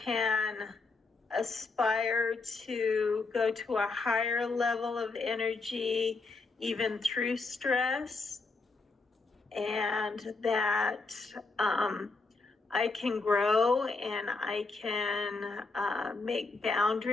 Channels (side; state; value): right; quieter; 3.8 dB